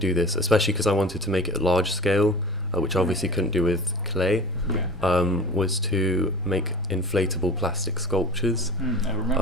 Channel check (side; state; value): both; normal; correlation 0.38